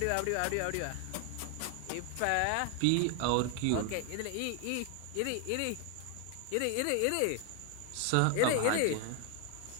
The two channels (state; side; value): different; both; correlation 0.00